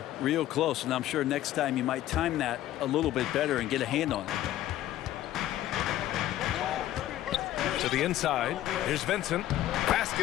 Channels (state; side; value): quieter; right; 13.5 dB